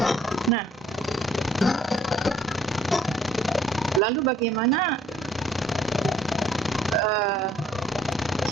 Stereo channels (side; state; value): both; normal; correlation 0.62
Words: Nah, lalu bagaimana